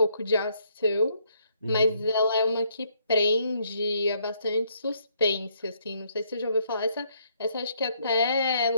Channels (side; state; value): both; inverted; correlation -0.71